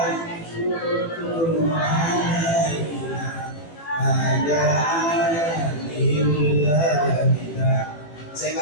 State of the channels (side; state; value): right; late; 18 ms